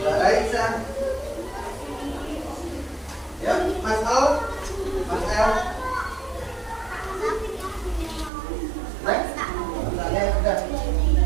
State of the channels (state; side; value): drops out; left; at 8.3 s